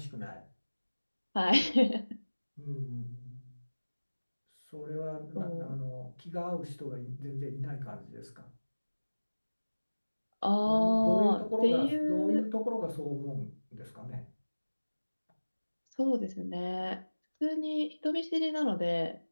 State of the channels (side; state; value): both; inverted; correlation -1.00